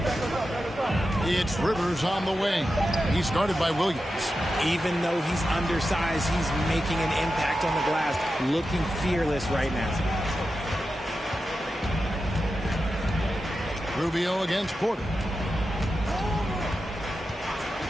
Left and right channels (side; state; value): both; normal; correlation 0.91